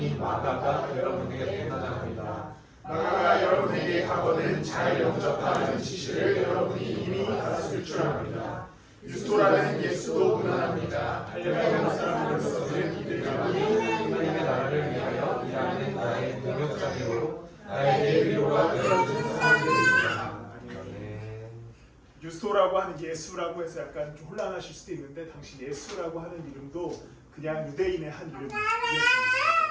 마가가 여러분에게 편안합니다. 마가가 여러분에게 하거든 잘 영접하는 지시를 여러분이 이미 알았을 줄 압니다. 유스토라는 예수도 무난합니다. 할례받은 사람으로서는 이들이 하나님의 나라를 위하여 일하는 나의 동역자이고 나에게 위로가 되어준 사람들입니다. 유스토라고 하는 예수라고 해서 약간 좀 혼란하실 수도 있는데 당시 예수라고 하는 이름도 그냥 유대인의 한 이름이었습니다.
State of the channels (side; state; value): both; identical; correlation 1.00